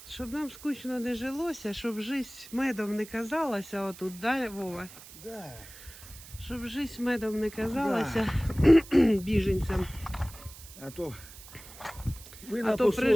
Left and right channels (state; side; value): noise; right; hiss, 17 dB below the sound